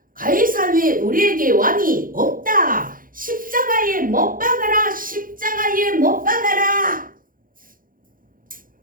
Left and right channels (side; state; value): left; late; 0.40 ms